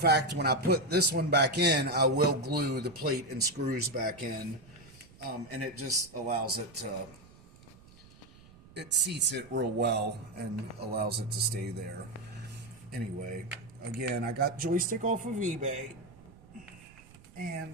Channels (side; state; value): right; noise; rumble, 23 dB below the sound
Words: when I put this one back in, I will glue the plate and screws back in, and it just allows it to... It seats it real well and allows it to stay there. Anyway, Again, I got Joystick off of eBay,